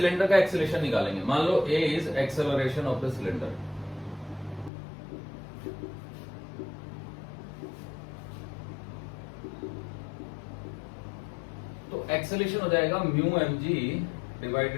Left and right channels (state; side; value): drops out; right; at 4.7 s